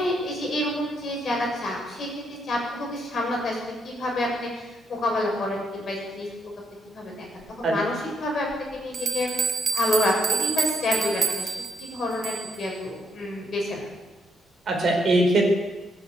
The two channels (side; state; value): both; normal; correlation 0.75